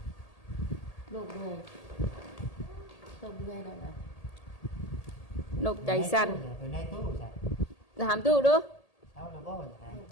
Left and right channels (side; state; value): right; late; 1.8 ms